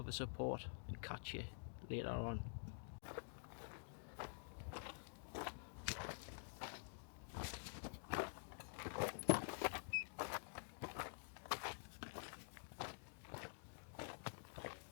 the support, and catch you later on.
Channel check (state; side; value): silent; right; digital silence